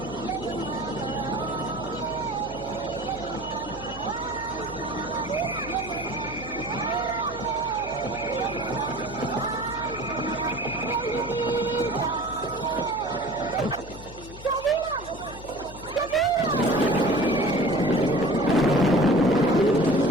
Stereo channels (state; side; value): noise; left; hum, 16 dB below the sound